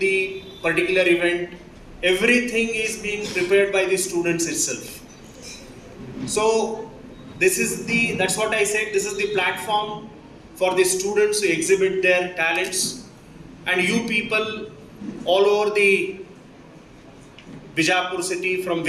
the particular event, everything is being prepared by the students itself. So that's what I said, this is the platform for the students to exhibit their talents, and you people all over the Bijapur city from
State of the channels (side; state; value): both; identical; correlation 1.00